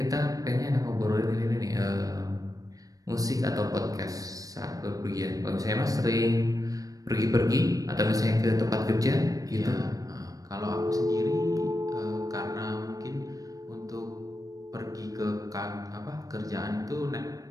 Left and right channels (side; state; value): left; late; 0.17 ms